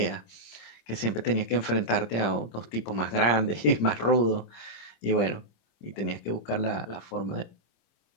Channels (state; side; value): late; right; 26 ms